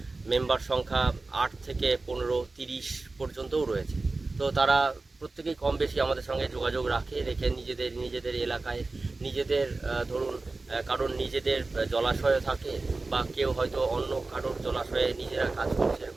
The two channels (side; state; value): left; quieter; 3.5 dB